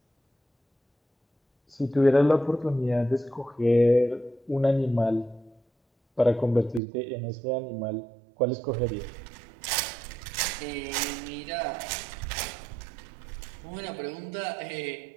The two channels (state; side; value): drops out; left; at 6.8 s